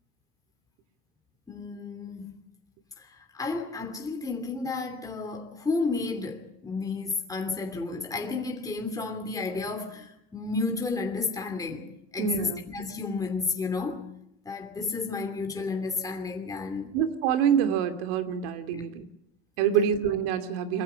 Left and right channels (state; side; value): normal; both; correlation 0.28